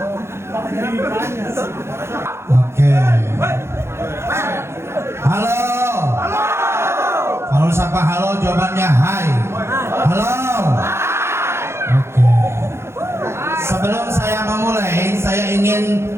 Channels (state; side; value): late; left; 0.13 ms